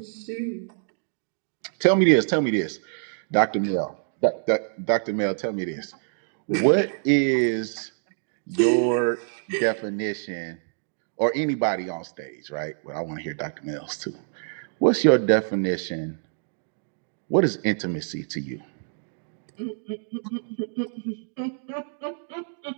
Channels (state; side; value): silent; left; digital silence